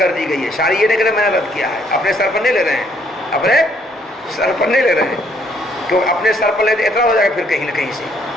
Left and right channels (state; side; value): normal; both; correlation 0.67